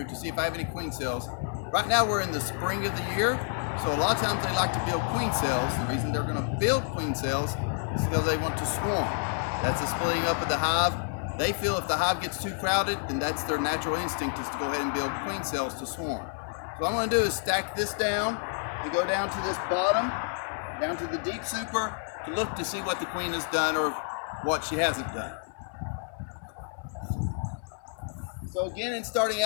to see if I have any queen cells. Right now we're in the spring of the year, so a lot of times they like to build queen cells. The reason they're going to build queen cells is because they want to swarm. That's the splitting up of the hive. They feel if the hive gets too crowded, then that's their natural instinct is to go ahead and build queen cells to swarm. So what I'm going to do is stack this down and go down to this bottom, down to the deep super, to look to see what the queen has done or what she hasn't done. So again, in starting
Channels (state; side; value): silent; right; 58 dB below the other